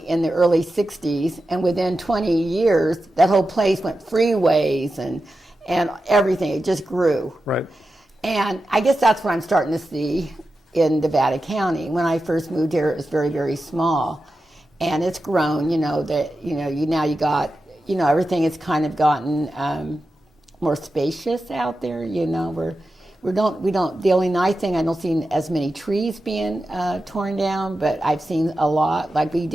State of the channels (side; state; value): both; normal; correlation 0.91